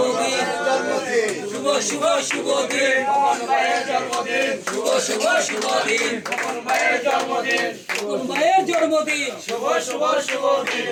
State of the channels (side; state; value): both; identical; correlation 1.00